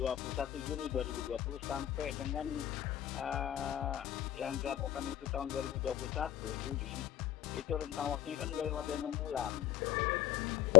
Juni 2020 sampai dengan yang dilakukan itu tahun 2021 Juli, itu rentang waktunya kan udah lewat 6 bulan.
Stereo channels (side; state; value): right; quieter; 12.9 dB